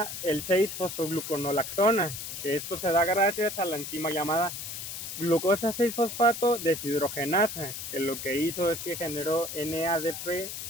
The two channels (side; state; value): left; noise; hiss, 7 dB below the sound